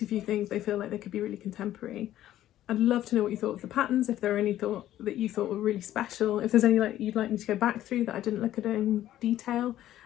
a few things, they feel like they could be really contemporary. I'd love to know what you thought of the patterns, if there are any that you thought were really special, if there's any you'd like me to go back through that I didn't look at in detail,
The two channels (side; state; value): right; quieter; 13.1 dB